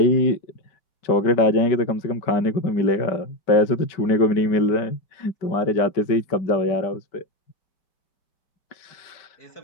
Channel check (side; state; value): right; late; 5.2 ms